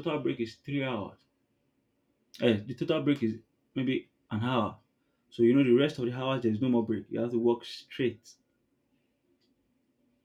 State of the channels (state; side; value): identical; both; correlation 1.00